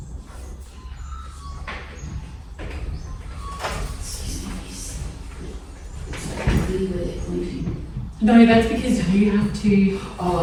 No, that's because you have to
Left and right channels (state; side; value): identical; both; correlation 1.00